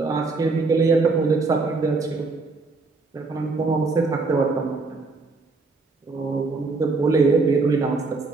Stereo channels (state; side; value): quieter; left; 3.8 dB